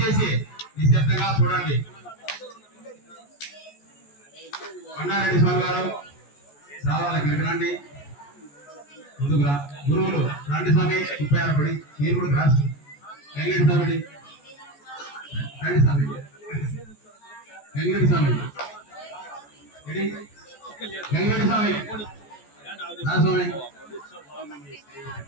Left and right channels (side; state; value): right; late; 14 ms